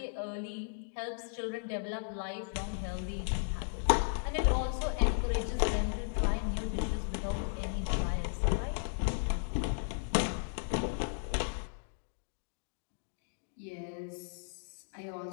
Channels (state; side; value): silent; right; digital silence